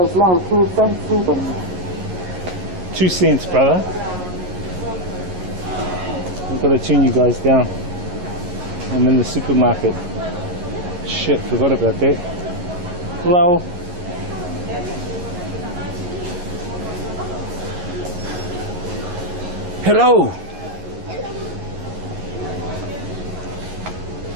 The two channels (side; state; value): left; late; 11 ms